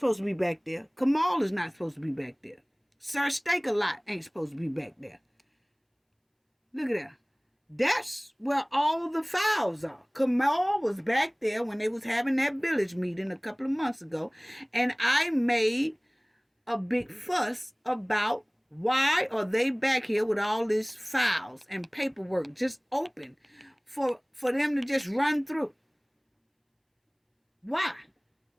to be back there. Kamal is not supposed to be back there. Sir Steak-A-Lot ain't supposed to be back there. Look at that. That's where all the files are. Kamal was back there when they was having that village meeting a couple of months ago, and I made a big fuss about why are they back here with all these files and paperwork just open for them to just run through. Why?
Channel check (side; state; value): both; identical; correlation 1.00